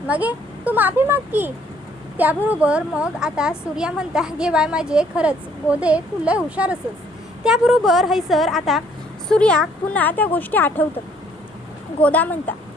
मगे तू माफी माग की. त्याबरोबर मग आता सूर्या म्हणता, गे बाय माझे खरंच गोदे तू लय हुशार असस. त्याबरोबर हैसर आता सूर्या पुन्हा त्या गोष्टी आठवतं. गोदा म्हणता,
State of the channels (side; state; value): both; normal; correlation 0.63